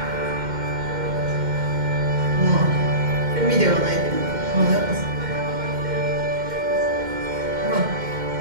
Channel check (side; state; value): left; late; 2.1 ms